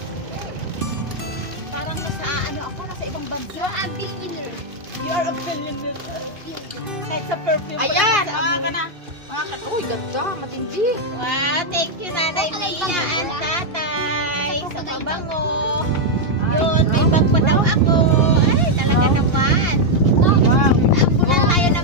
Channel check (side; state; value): left; late; 2.6 ms